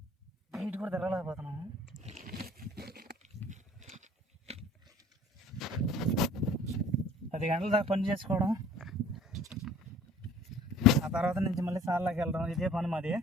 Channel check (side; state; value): both; normal; correlation 0.51